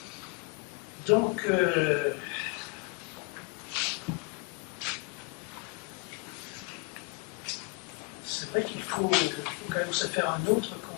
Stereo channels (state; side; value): quieter; right; 30.3 dB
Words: des dominés. Donc, c'est vrai qu'il faut quand même se faire un autre